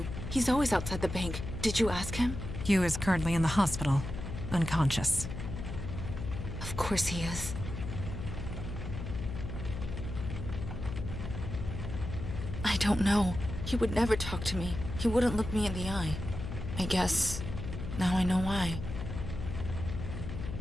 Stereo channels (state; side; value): noise; left; hum, 6 dB below the sound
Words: He's always outside the bank. Did you ask him? Hugh is currently in the hospital, unconscious. Of course he is. I don't know. He would never talk to me. He wouldn't look me in the eye. I guess now I know why.